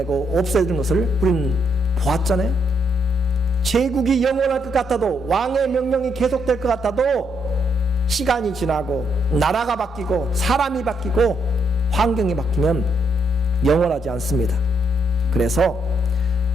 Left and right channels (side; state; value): both; normal; correlation 0.75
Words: 없애는 것을 우리는 보았잖아요. 제국이 영원할 것 같아도 왕의 명령이 계속될 것 같아도 시간이 지나고 나라가 바뀌고 사람이 바뀌고 환경이 바뀌면 영원하지 않습니다. 그래서